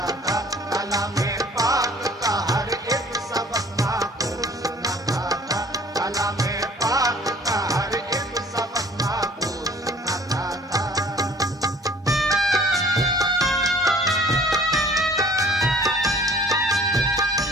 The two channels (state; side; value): normal; both; correlation 0.52